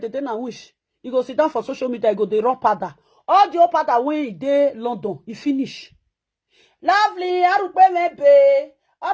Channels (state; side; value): identical; both; correlation 1.00